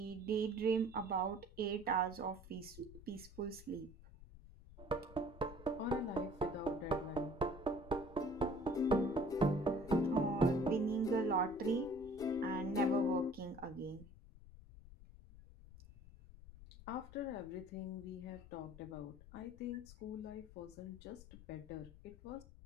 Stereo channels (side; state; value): left; noise; rumble, 18 dB below the sound